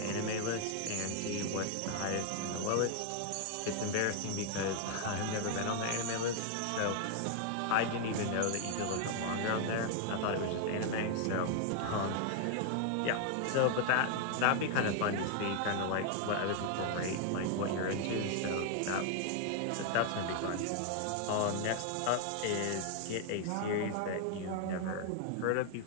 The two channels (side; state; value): both; different; correlation 0.00